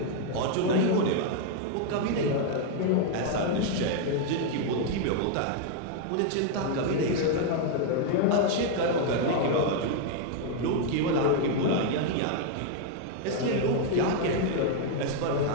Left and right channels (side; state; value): both; different; correlation 0.00